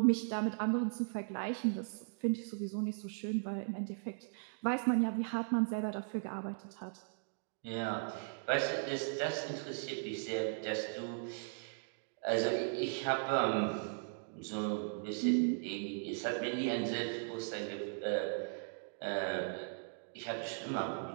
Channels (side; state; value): left; silent; digital silence